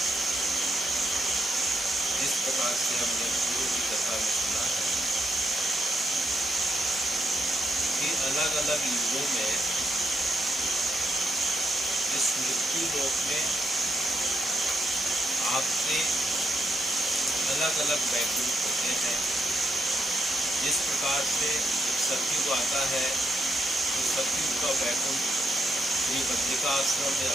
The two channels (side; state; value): both; normal; correlation 0.80